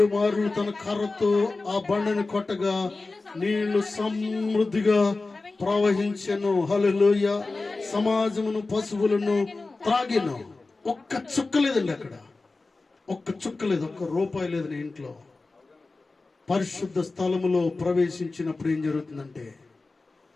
మార్లు తన కర్రతో ఆ బండను కొట్టగా నీళ్లు సమృద్ధిగా ప్రవహించెను. హల్లెలూయా. సమాజమును పశువులను త్రాగిను. ఒక్క చుక్క లేదండి అక్కడ, ఒక్క చుక్క లేదు, ఒక్క రూపాయి లేదు నీ ఇంట్లో. పరిశుద్ధ స్థలములో ప్రవేశించినప్పుడు ఏం జరుగుతుందంటే,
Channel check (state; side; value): quieter; right; 3.5 dB